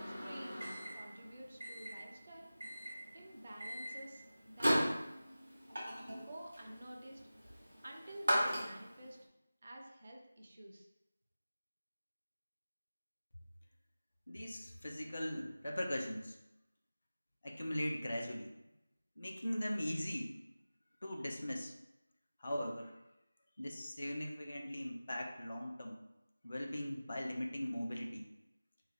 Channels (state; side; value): inverted; both; correlation -0.96